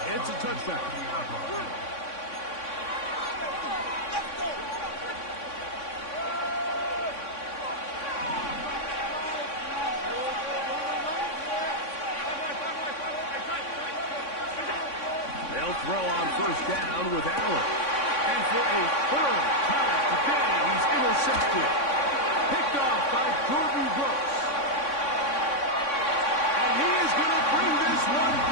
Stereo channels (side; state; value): right; late; 3.6 ms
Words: It's a touchback. They'll throw on first down with Allen. And for a third time today, he's intercepted. Picked off by Gordon Brooks. And he is going to bring this one